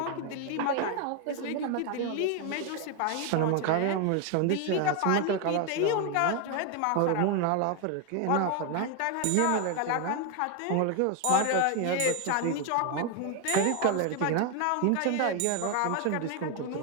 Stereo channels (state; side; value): different; both; correlation 0.01